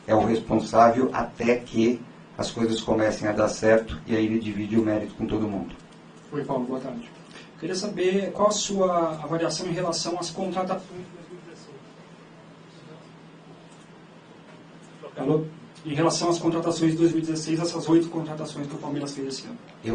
é o responsável até que as coisas comecem a dar certo, e aí ele divide o mérito com todo mundo. Oi, Paulo, boa tarde. Queria saber qual a sua avaliação em relação às contratações de 2016. Alô? Em relação às contratações de 2016, essas 8 contratações que o Palmeiras fez esse ano.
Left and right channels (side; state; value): both; identical; correlation 1.00